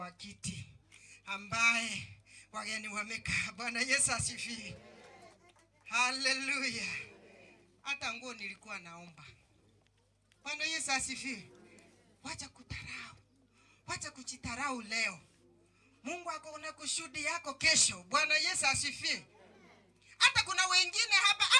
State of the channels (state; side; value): identical; both; correlation 1.00